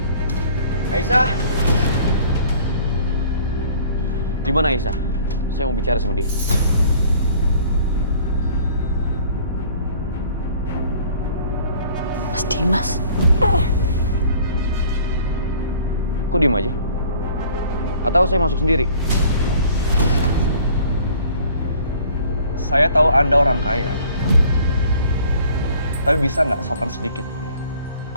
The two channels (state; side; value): inverted; both; correlation -0.53